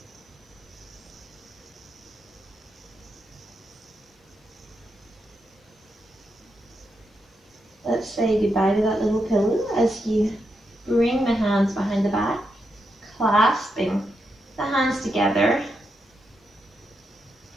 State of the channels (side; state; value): both; normal; correlation 0.84